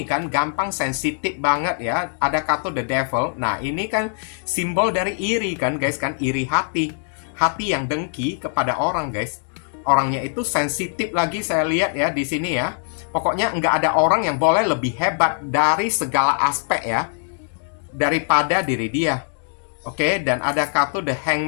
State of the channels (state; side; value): silent; right; digital silence